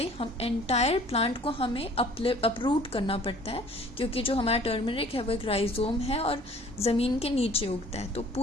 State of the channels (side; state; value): both; normal; correlation 0.52